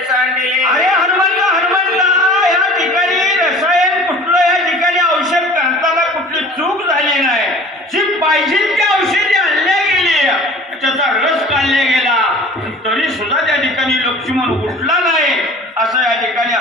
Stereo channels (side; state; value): both; normal; correlation 0.44